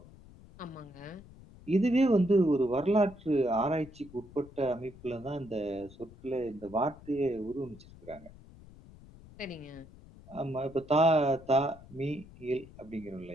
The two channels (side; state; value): left; noise; rumble, 20 dB below the sound